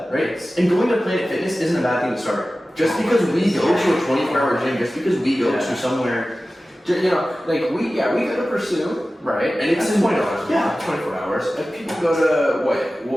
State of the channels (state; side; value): normal; both; correlation 0.96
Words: right? And going to Planet Fitness isn't a bad thing to start. Just because we go to a 24-hour gym, just because we go to somewhere, you know, like we go to Pursue, right? And it's $20 yeah, 24 hours. If people go to